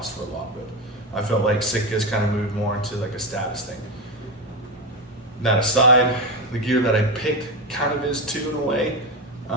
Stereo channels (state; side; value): normal; both; correlation 0.14